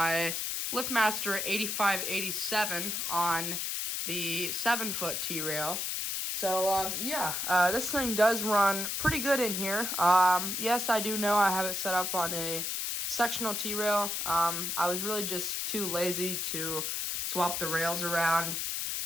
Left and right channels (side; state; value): left; noise; hiss, 1 dB below the sound